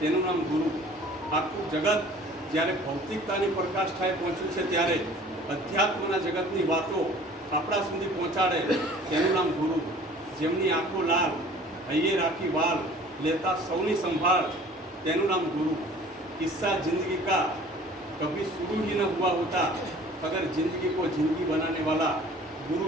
નામ ગુરુ. આખું જગત જ્યારે ભૌતિકતાની પ્રકાષ્ઠાએ પહોંચ્યું છે ત્યારે અધ્યાત્મના જગતની વાતો આપણા સુધી પહોંચાડે તેનું નામ ગુરુ. જેમની આંખો લાલ, હૈયે રાખી વાલ, લેતા સૌની સંભાળ, તેનું નામ ગુરુ. કિસ્સા જિંદગી કા કભી શુरू ही न हुआ होता अगर जिंदगी को जिंदगी बनाने वाला गुरु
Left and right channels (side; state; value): both; normal; correlation 0.48